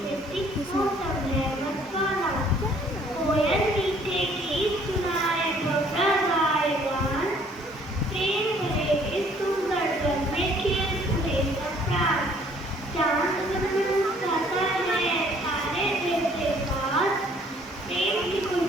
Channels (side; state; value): both; normal; correlation 0.59